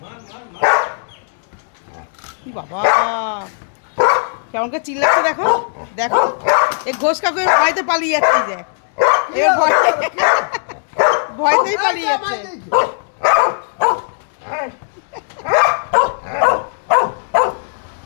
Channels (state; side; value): silent; right; digital silence